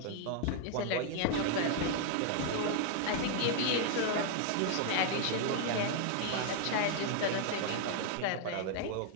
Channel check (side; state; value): both; different; correlation 0.00